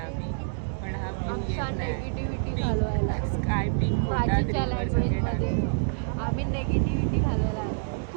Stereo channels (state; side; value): silent; left; digital silence